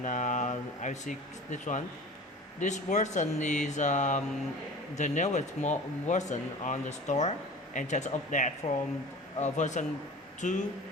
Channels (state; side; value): normal; both; correlation 0.39